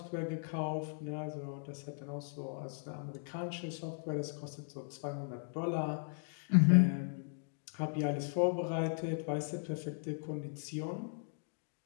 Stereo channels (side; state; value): right; silent; digital silence